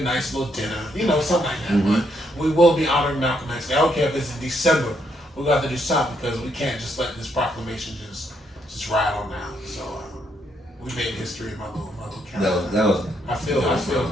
little dinner, something like that. Mm-hmm. But we will be honoring Malcolm X Day. I don't care if it's in December. We're gonna have to do something, because we can't just let this proclamation just ride on now. So we made history in my little county. I feel good.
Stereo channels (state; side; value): normal; both; correlation 0.75